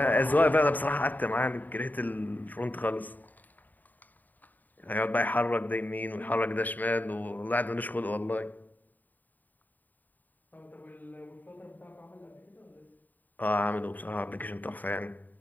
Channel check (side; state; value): right; late; 0.086 ms